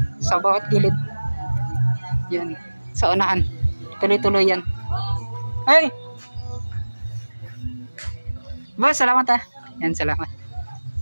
sa bawat gilid. Yan, sa unahan. Tuloy-tuloy yan. Hey! Boss, salamat Yan, salamat.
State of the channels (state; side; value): inverted; both; correlation -1.00